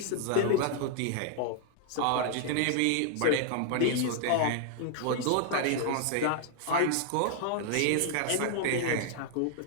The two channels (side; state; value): both; different; correlation 0.00